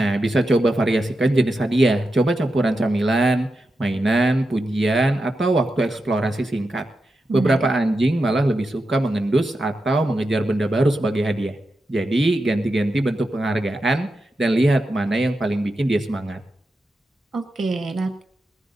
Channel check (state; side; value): normal; both; correlation 0.89